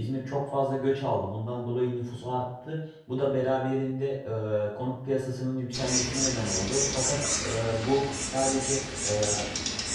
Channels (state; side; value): identical; both; correlation 1.00